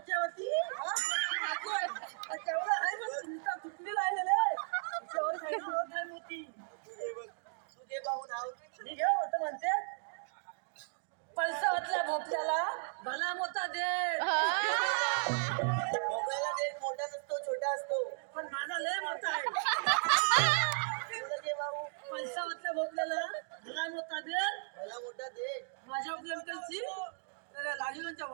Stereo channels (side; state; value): left; silent; digital silence